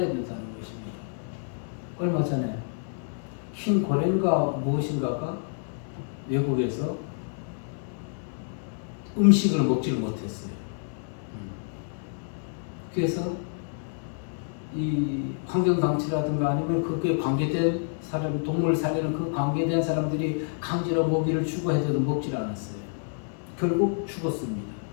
된다는 것입니다. 얼마 전에 흰 고랭가 무엇인가가 외국에서 음식을 먹지를 못했어요. 그래서 이 환경단체라든가 아니면 그게 관계된 사람, 동물 살리는 그 관계된 사람들이 강제로 먹이를 주고 해도 먹질 않았어요. 결국 죽었습니다.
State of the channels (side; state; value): right; silent; digital silence